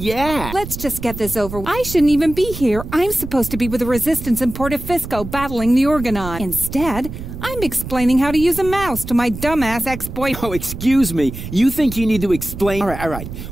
Let's just get this over. I shouldn't even be here. I'm supposed to be with the Resistance in Portofisco battling the Organon. Instead, I'm explaining how to use a mouse to my dumbass ex-boyfriend. Oh, excuse me. You think you need to explain? All right.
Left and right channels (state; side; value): noise; right; rumble, 10 dB below the sound